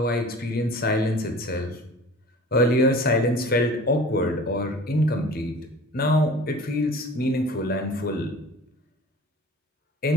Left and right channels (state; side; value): normal; both; correlation 0.42